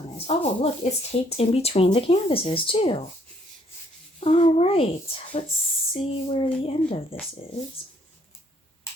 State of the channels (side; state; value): both; normal; correlation 0.66